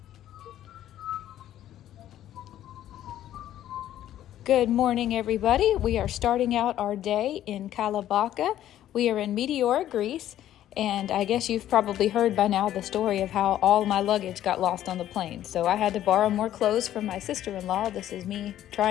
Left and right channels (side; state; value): right; quieter; 12.2 dB